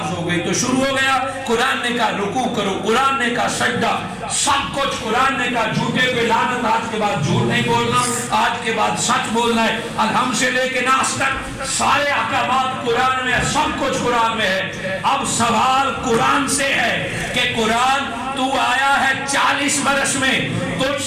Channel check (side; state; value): both; identical; correlation 1.00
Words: ہو گئی تو شروع ہو گیا، قرآن نے کہا رکوع کرو، قرآن نے کہا سجدہ، سب کچھ قرآن نے کہا جھوٹے پہ لعنت، آج کے بعد جھوٹ نہیں بولنا، آج کے بعد سچ بولنا ہے، الحم سے لے کے ناس تک سارے احکامات قرآن میں، سب کچھ قرآن میں ہے۔ اب سوال قرآن سے ہے کہ قرآن تو آیا ہے 40 برس میں، تجھ